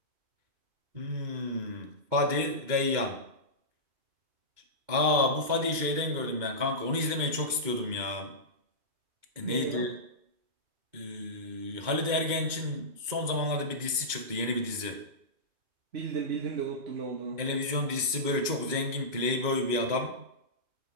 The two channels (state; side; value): late; left; 2.2 ms